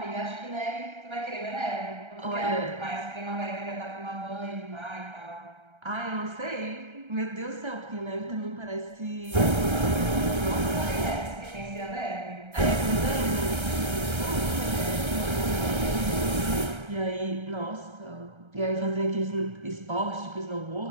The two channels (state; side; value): late; left; 1.3 ms